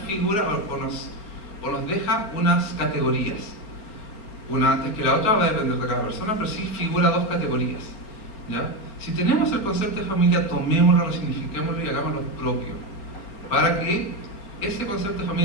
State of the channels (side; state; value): right; late; 4.3 ms